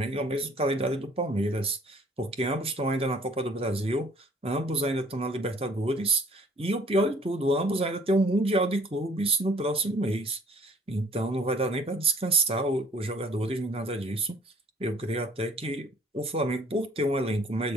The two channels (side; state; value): both; normal; correlation 0.57